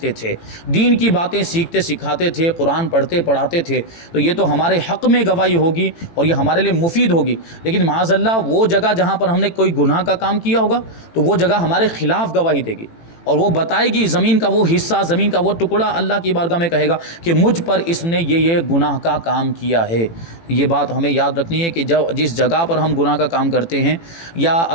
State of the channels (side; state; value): right; late; 18 ms